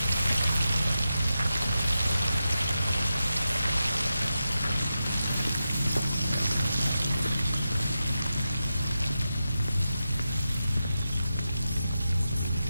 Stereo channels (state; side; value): inverted; both; correlation -0.90